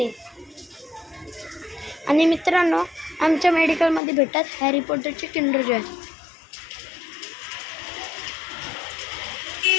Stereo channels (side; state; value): right; drops out; at 4.0 s